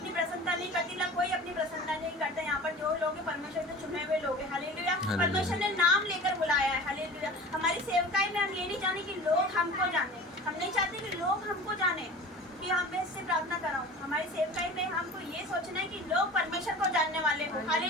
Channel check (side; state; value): both; normal; correlation 0.39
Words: प्रसन्नता नहीं करती ना, कोई अपनी प्रसन्नता नहीं करता। यहाँ पर जो लोग परमेश्वर के चुने हुए लोग हैं। हालेलुया। परमेश्वर ने नाम लेकर बुलाया है। हालेलुया। हमारी सेवकाई में हम ये नहीं जाने कि लोग हमको जाने, हम नहीं चाहते कि लोग हमको जाने कि हम इससे प्रार्थना कराऊं। हमारी सेवकाई में हमको ये सोचना है कि लोग परमेश्वर को जानने वाले हो।